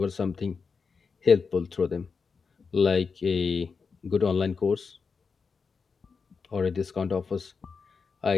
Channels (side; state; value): right; quieter; 5.2 dB